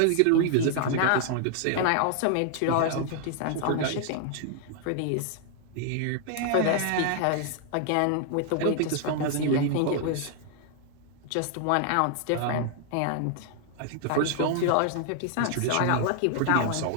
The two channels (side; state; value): both; different; correlation 0.00